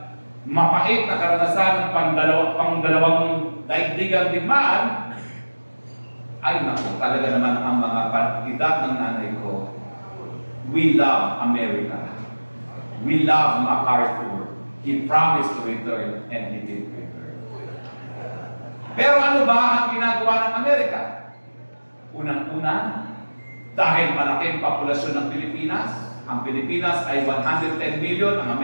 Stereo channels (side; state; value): both; inverted; correlation -1.00